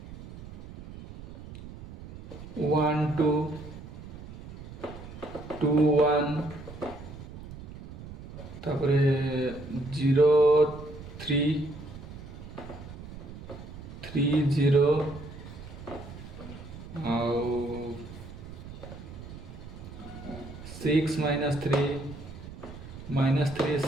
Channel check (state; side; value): noise; right; rumble, 13 dB below the sound